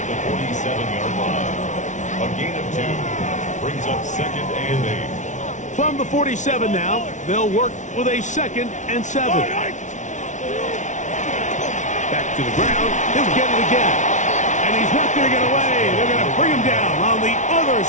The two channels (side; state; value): right; late; 0.36 ms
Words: the 47-yard line. A gain of 2 brings up 2nd and 8. From the 47 now, they'll work with a 2nd and 7. Back to the ground. He'll get it again. And he's not going to get away. They're going to bring him down on the other